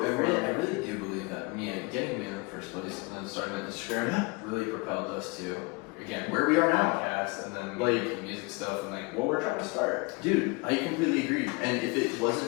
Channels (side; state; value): right; quieter; 28.2 dB